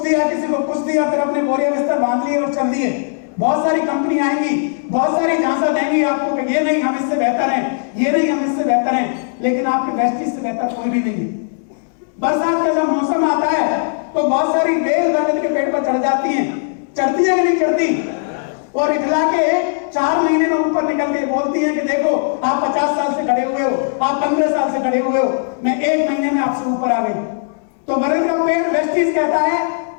दिया, किसी को कुछ दिया, फिर अपने बोरिया बिस्तर बांध लिए और चल दिए। बहुत सारी कंपनी आएंगी, बहुत सारी झांसा देंगी आपको कि ये नहीं हम इससे बेहतर हैं, ये नहीं हम इससे बेहतर हैं, लेकिन आपके वेस्टीज से बेहतर कोई भी नहीं है। बरसात का जब मौसम आता है तो बहुत सारी बेल बरगद के पेड़ पर चढ़ जाती हैं, चढ़ती है कि नहीं चढ़ती? और इखला के 4 महीने में ऊपर निकल के बोलती है कि देखो आप 50 साल से खड़े हुए हो, आप 15 साल से खड़े हुए हो, मैं 1 महीने में आपसे ऊपर आ गई। तो बरगद का पेड़ वेस्टीज कहता है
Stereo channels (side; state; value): right; silent; 68 dB below the other